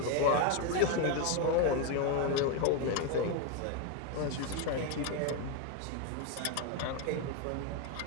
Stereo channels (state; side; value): different; both; correlation 0.01